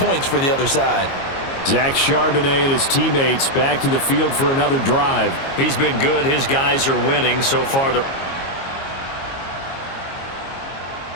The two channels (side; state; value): right; late; 22 ms